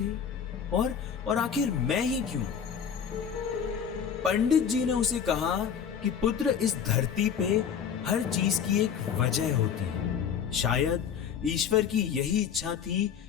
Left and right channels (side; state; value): right; quieter; 7.7 dB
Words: और आखिर मैं ही क्यों? पंडित जी ने उसे कहा कि पुत्र, इस धरती पे हर चीज की एक वजह होती है। शायद ईश्वर की यही इच्छा थी